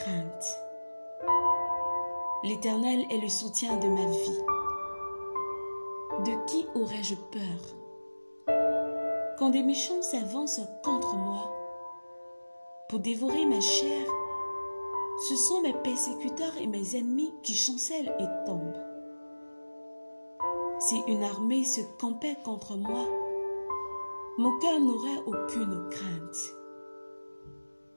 L'Éternel est le soutien de ma vie. De qui aurais-je peur? Quand des méchants s'avancent contre moi pour dévorer ma chair, ce sont mes persécuteurs et mes ennemis qui chancellent et tombent. Si une armée se campait contre moi, mon cœur n'aurait aucune crainte.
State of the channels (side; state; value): both; inverted; correlation -1.00